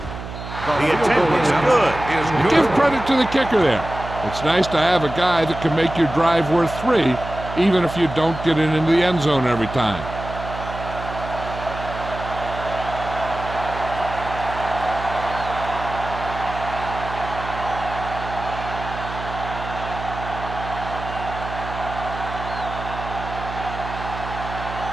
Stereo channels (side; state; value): right; noise; hum, 9 dB below the sound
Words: The attempt is good. You give credit to the kicker there. It's nice to have a guy that can make your drive worth 3, even if you don't get it into the end zone every time.